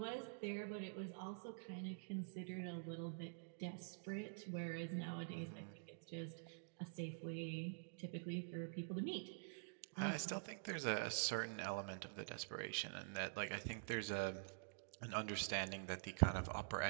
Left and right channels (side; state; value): left; silent; digital silence